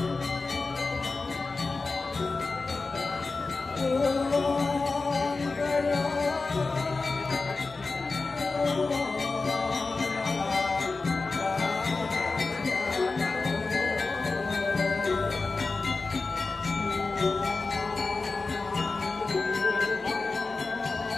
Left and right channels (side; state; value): right; quieter; 3.8 dB